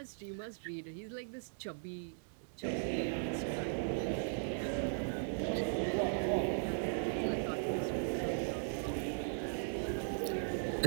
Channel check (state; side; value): silent; left; digital silence